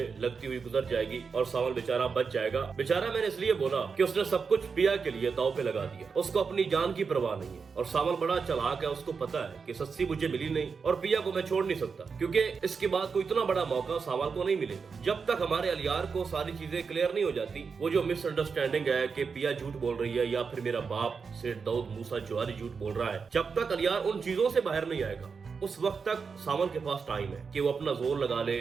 लगती हुई गुजर जाएगी और सावन बेचारा बच जाएगा। बेचारा मैंने इसलिए बोला कि उसने सब कुछ पिया के लिए दाव पे लगा दिया। उसको अपनी जान की परवाह नहीं है और सावन बड़ा चालाक है। उसको पता है कि सस्सी मुझे मिली नहीं और पिया को मैं छोड़ नहीं सकता, क्योंकि इसके बाद कोई इतना बड़ा मौका सावन को नहीं मिलेगा। जब तक हमारे अलियार को सारी चीजें क्लियर नहीं हो जाती, वो जो मिसअंडरस्टैंडिंग है कि पिया झूठ बोल रही है या फिर मेरा बाप सेठ दाऊद मूसा जवारी झूठ बोल रहा है, जब तक अलियार उन चीजों से बाहर नहीं आएगा उस वक्त तक सावन के पास टाइम है कि वो अपना जोर लगा ले,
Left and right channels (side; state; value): left; quieter; 5.4 dB